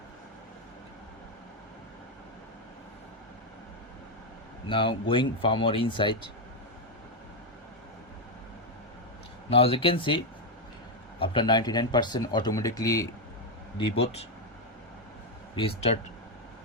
Now going far more inside. Now as you can see, after 99% automatically reboot, restart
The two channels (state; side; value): normal; both; correlation 0.03